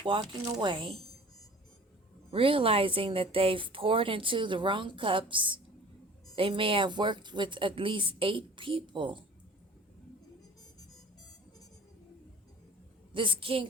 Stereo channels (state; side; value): normal; both; correlation 0.45